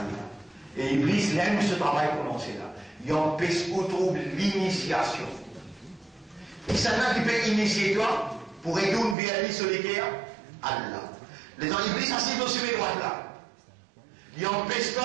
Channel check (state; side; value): drops out; left; at 9.2 s